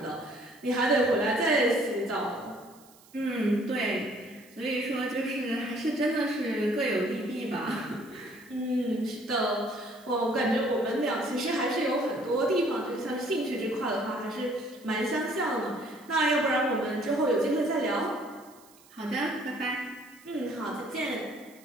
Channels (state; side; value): noise; right; hiss, 26 dB below the sound